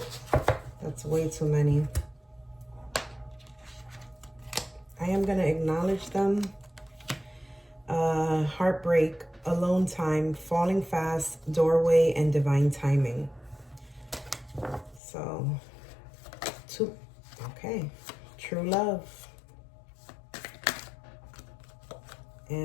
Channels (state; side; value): drops out; right; at 15.0 s